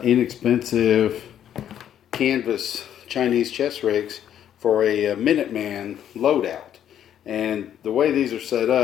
inexpensive canvas Chinese chest rigs for a Minuteman loadout. And the way these are set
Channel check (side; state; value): right; quieter; 10.2 dB